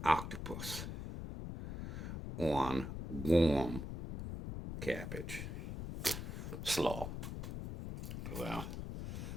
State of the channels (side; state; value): left; noise; rumble, 6 dB below the sound